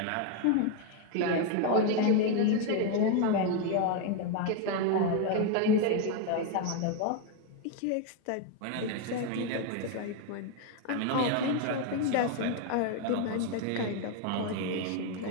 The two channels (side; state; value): both; different; correlation 0.01